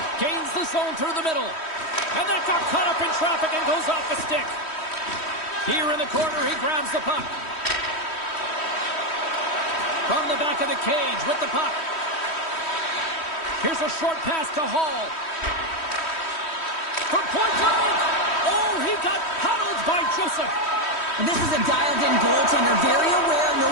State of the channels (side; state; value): right; late; 3.1 ms